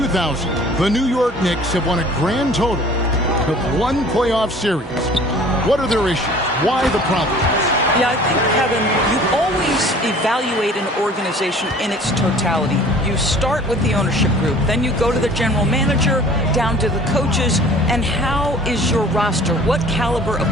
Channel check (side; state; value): both; normal; correlation 0.48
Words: the New York Knicks have won a grand total of 1 playoff series. What are their issues? Why the problems? Yeah, I think, Kevin, you always evaluate an organization in its totality. You start with the ownership group, then you go to the general manager, down to the coaches, and how is your roster? What caliber of